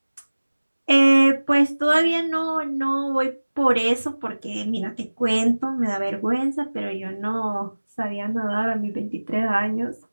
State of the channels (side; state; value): both; inverted; correlation -1.00